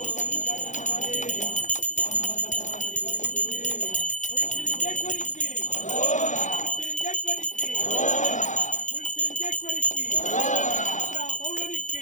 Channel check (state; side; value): late; right; 0.36 ms